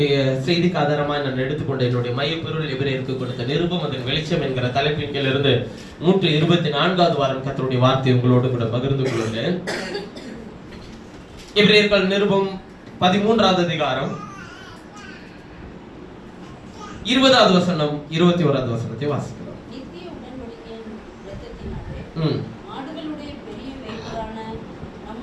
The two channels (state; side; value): identical; both; correlation 1.00